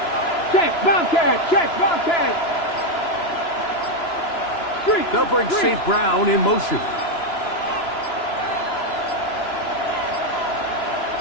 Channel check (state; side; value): late; right; 2.9 ms